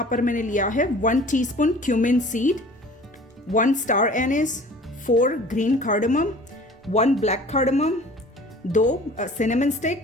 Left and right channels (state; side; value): normal; both; correlation 0.46